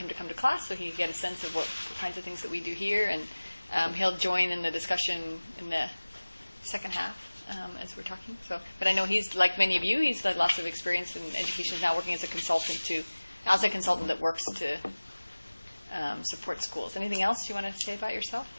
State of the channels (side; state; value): both; inverted; correlation -1.00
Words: to come to class so he could get a sense of what kinds of things that we do here, and he'll join in the discussion in the second half as we're talking. But I know he's, like many of you, he's had lots of experience in education. He's now working as a consultant that works to support schools. Anything else you want to say about yourself?